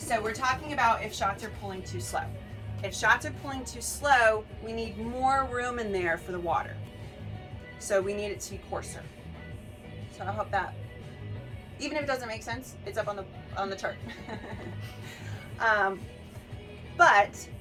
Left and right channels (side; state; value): both; identical; correlation 1.00